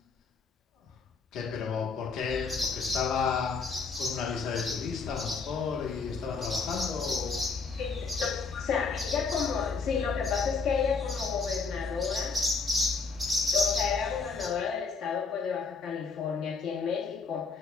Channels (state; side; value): quieter; right; 4.8 dB